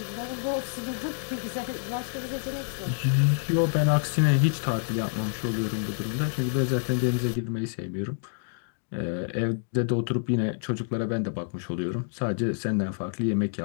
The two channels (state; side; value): silent; right; digital silence